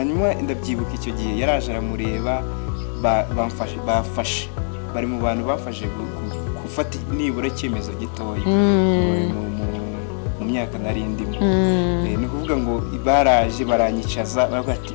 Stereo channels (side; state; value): right; silent; 64 dB below the other